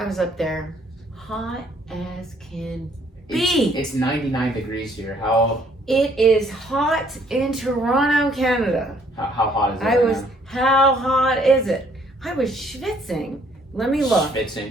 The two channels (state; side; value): normal; both; correlation 0.64